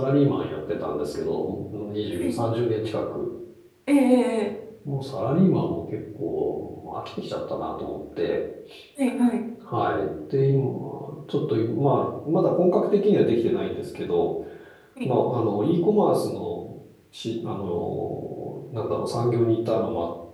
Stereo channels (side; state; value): both; identical; correlation 1.00